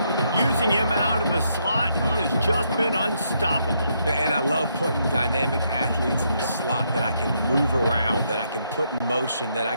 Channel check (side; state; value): both; inverted; correlation -0.76